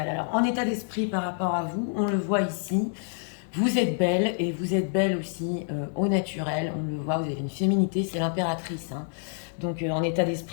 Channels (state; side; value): silent; right; digital silence